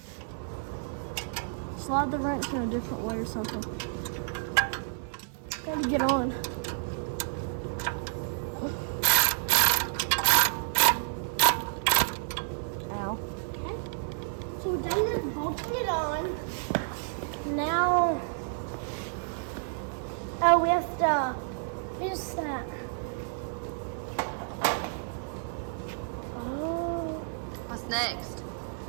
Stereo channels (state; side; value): silent; left; digital silence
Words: Slide the wrench in a different way or something. Gotta get on. Ow. Okay. So we're done with bolting it on. Now, oh, we have to What's that? Oh, What's next?